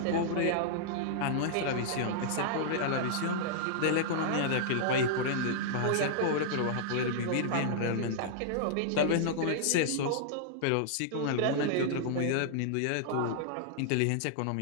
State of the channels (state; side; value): different; both; correlation -0.01